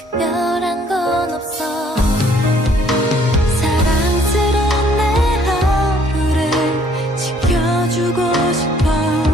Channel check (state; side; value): normal; both; correlation 0.62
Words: 건 없어. 사랑스러운 내 하루를 지켜주고 싶어.